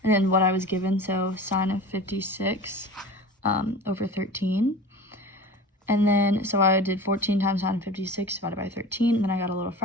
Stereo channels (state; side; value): normal; both; correlation 0.36